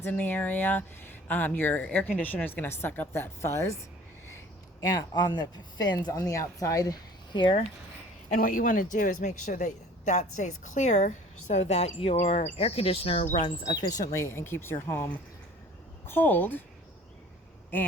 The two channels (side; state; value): both; normal; correlation 0.49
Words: in the area, your air conditioner is going to suck up that fuzz and on the fins on the outside here. And what you want to do is make sure that that stays clear so that your air conditioner runs efficiently and keeps your home cold